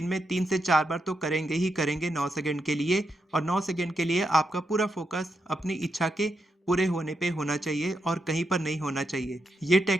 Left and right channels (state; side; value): normal; both; correlation 0.84